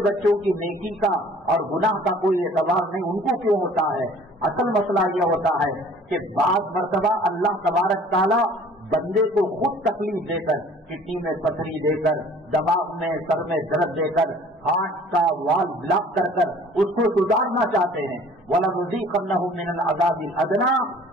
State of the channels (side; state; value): both; normal; correlation 0.51